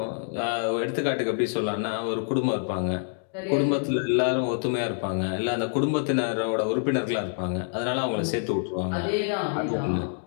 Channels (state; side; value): silent; right; digital silence